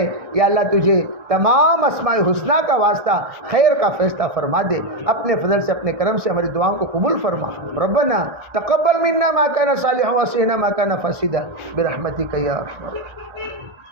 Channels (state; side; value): late; left; 1.4 ms